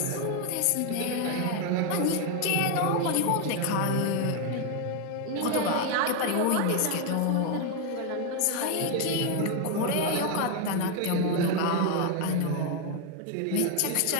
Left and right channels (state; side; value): different; both; correlation 0.01